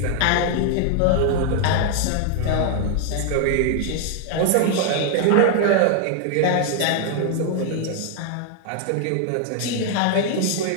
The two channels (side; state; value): both; different; correlation 0.00